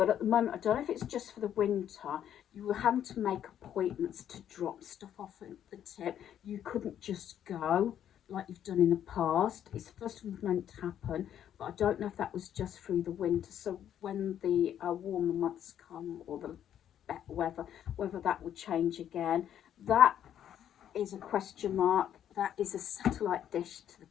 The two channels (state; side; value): quieter; right; 10.1 dB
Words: at the moment, I don't know if it's just for the winter, you were having to make appointments to drop stuff off at the tip. You couldn't just go like you've done in the past. It's the first time it's meant to happen, but I don't know if that was just through the winter. So when the warmer months come, or the better weather, whether that would change again, that is a question mark. That is a satellite dish to the